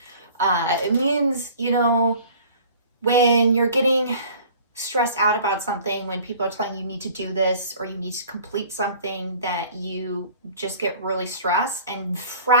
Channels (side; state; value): both; inverted; correlation -0.48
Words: it means, when you're getting stressed out about something, when people are telling you need to do this or you need to complete something, that you just get really stressed and